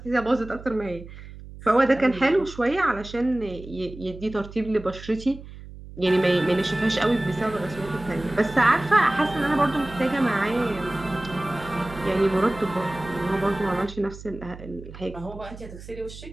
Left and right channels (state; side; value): noise; right; hum, 15 dB below the sound